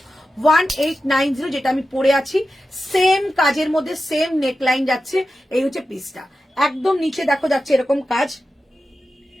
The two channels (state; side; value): normal; both; correlation 0.92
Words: 1890 যেটা আমি পরে আছি, সেম কাজের মধ্যে সেম নেকলাইন যাচ্ছে। এই হচ্ছে পিসটা, একদম নিচে দেখো যাচ্ছে এরকম কাজ।